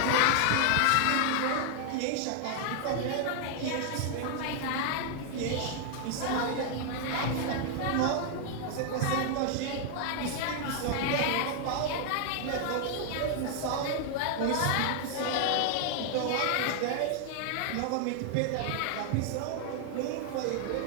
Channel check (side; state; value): both; different; correlation 0.00